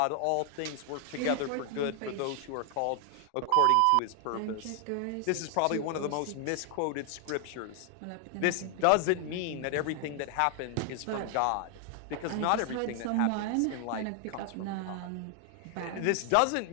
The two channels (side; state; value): both; different; correlation 0.00